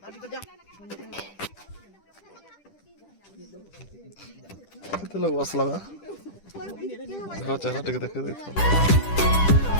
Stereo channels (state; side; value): late; right; 10 ms